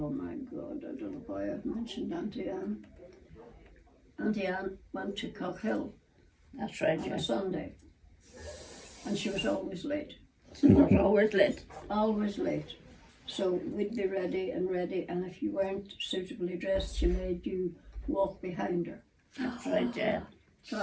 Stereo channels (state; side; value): identical; both; correlation 1.00